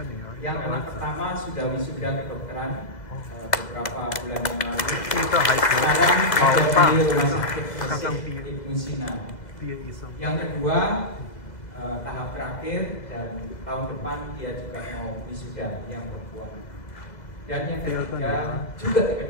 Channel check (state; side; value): late; right; 2.0 ms